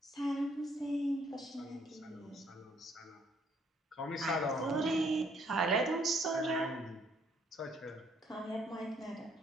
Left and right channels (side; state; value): both; normal; correlation 0.66